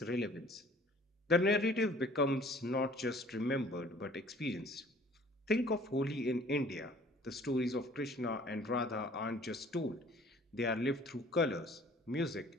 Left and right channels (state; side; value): normal; both; correlation 0.53